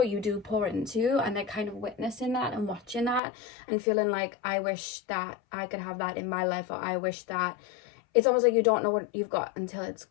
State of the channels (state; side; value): drops out; right; at 3.2 s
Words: you do pour into, and they're kind of witnessing that and watching that and feeling like, I wish that I could have that in my life, or I wish that it's almost like you don't know what you've got until it's